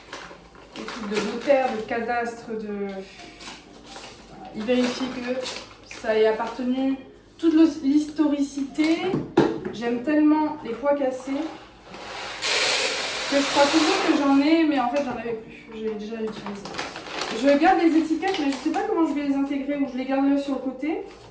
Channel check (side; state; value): both; identical; correlation 1.00